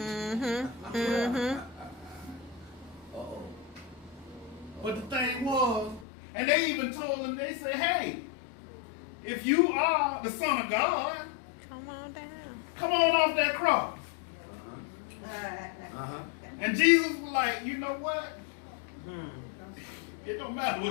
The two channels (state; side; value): drops out; right; at 6.1 s